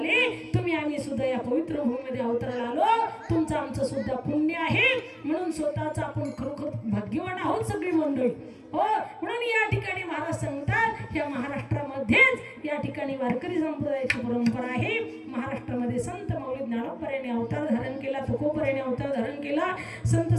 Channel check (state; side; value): identical; both; correlation 1.00